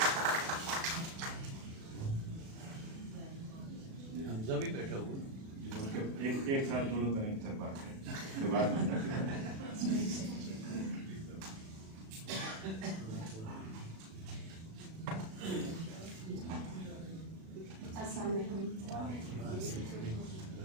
भी बैठा हुआ एक साथ दोनों तरह सर बात करें के बाद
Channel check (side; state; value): left; late; 37 ms